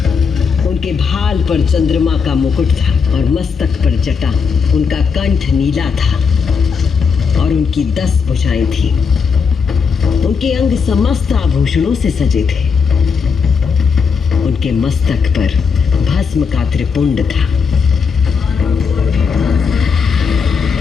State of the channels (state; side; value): quieter; right; 5.7 dB